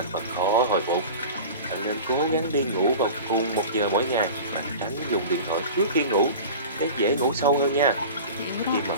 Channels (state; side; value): inverted; both; correlation -0.35